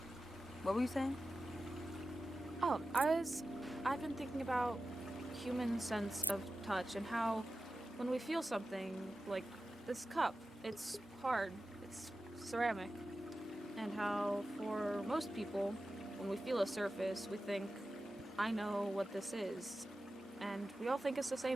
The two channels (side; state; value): both; normal; correlation 0.93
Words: What were you saying? Oh, I've been thinking about human sense of touch and how when we feel something like this cup, it's hard, it's ceramic, and how for most people, when we feel a surface, we think, I know what this is, and we all think it's the